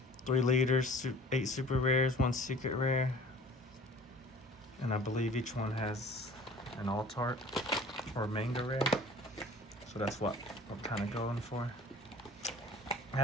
3 leaders, 8 super rares, 1 secret rare, and I believe each one has an alt art or a manga rare, so that's what I'm kind of going for. I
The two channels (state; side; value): normal; both; correlation 0.47